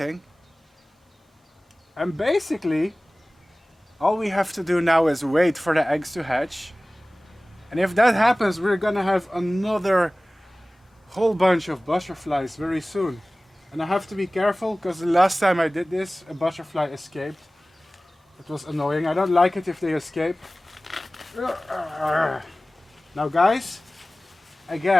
And basically, all we have to do now is wait for the eggs to hatch. And if that happens, we're gonna have another whole bunch of butterflies very soon. And I have to be careful because the last time I did this, a butterfly escaped. It was annoying. I don't like it if they escape. Now guys,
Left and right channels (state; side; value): normal; both; correlation 0.98